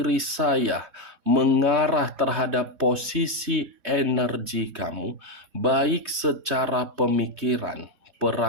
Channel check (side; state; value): left; late; 3.2 ms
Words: saya mengarah terhadap posisi energi kamu, baik secara pemikiran,